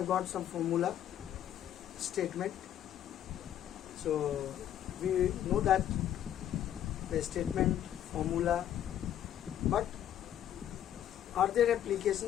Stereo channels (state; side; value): quieter; right; 10.9 dB